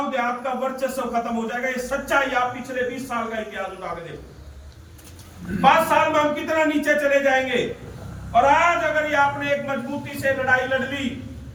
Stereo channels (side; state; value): both; identical; correlation 1.00